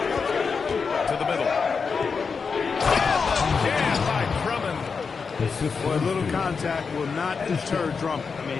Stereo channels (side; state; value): right; quieter; 5.3 dB